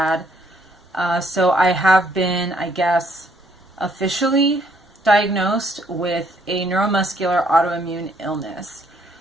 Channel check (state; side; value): normal; both; correlation 0.68